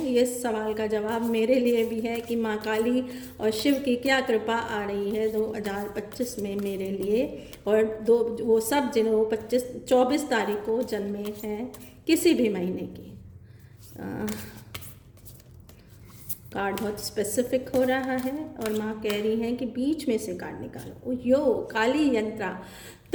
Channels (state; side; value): identical; both; correlation 1.00